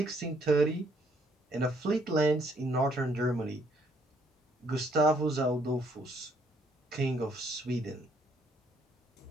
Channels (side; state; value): both; normal; correlation 0.67